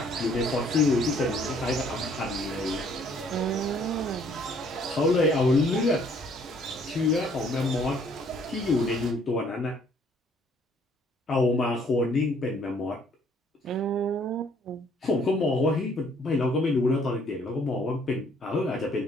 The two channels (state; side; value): normal; both; correlation 0.62